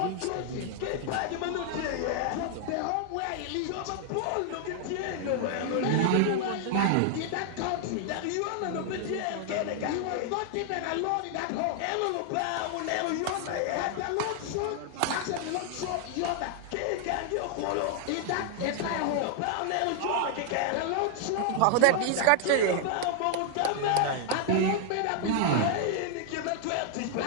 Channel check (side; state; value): both; different; correlation 0.00